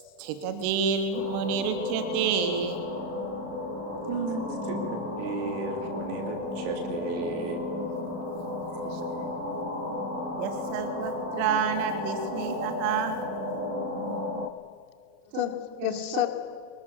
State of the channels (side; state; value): left; late; 36 ms